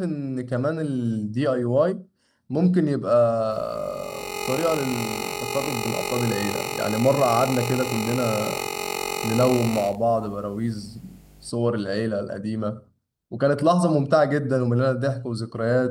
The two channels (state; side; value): identical; both; correlation 1.00